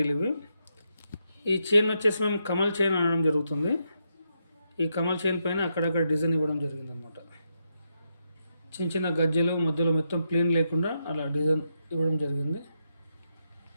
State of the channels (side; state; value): both; inverted; correlation -0.81